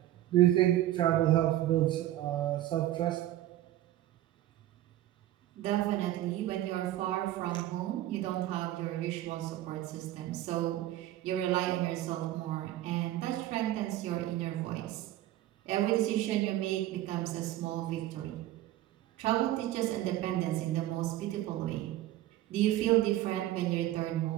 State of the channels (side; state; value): left; quieter; 14.2 dB